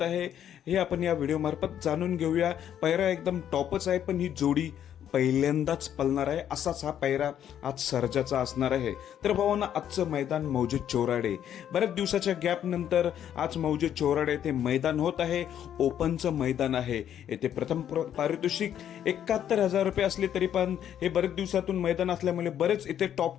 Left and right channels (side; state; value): right; quieter; 10.0 dB